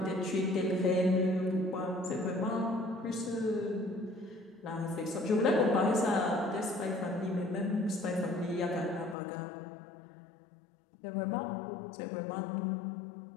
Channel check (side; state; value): right; drops out; at 9.2 s